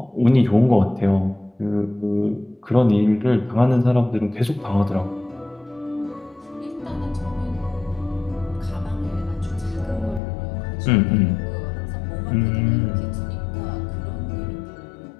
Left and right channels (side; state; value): right; drops out; at 10.2 s